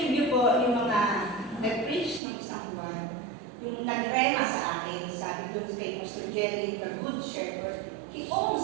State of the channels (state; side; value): drops out; left; at 2.2 s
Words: po yung mga nag-preach ng isang buwan, yung nagrema sa akin, sabi doon kay Pastor Jerry, the Good Shepherd, He